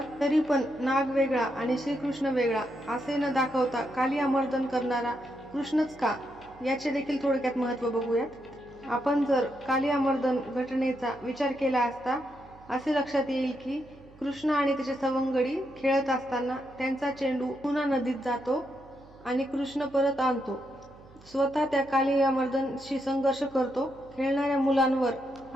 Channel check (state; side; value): noise; right; hum, 24 dB below the sound